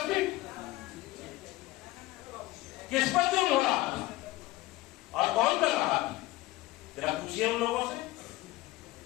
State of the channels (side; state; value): right; quieter; 18.2 dB